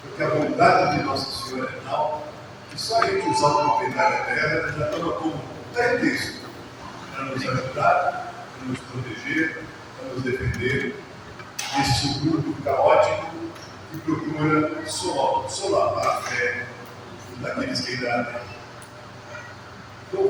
Porque a bondade de Nossa Senhora é tal que só a gente usar uma medalha dela já toma como pretexto para nos ajudar, para nos proteger, para nos defender deste mundo caótico que procura solapar a fé daqueles que ainda há.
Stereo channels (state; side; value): identical; both; correlation 1.00